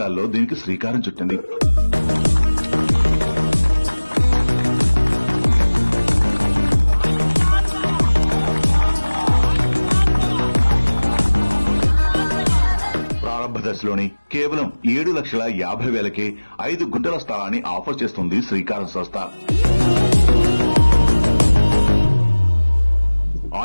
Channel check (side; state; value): both; inverted; correlation -1.00